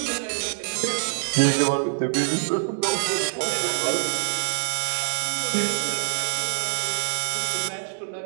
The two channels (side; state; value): left; silent; digital silence